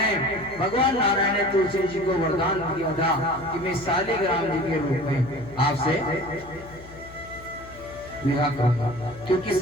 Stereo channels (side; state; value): left; noise; hum, 18 dB below the sound